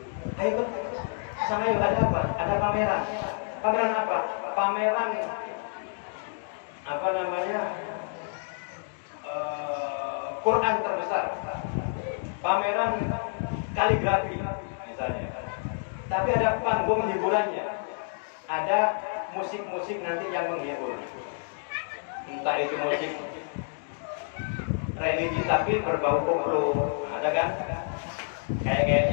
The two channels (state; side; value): silent; right; digital silence